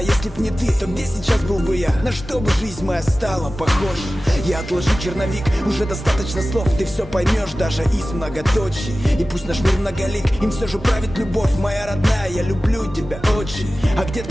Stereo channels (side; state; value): both; normal; correlation 0.96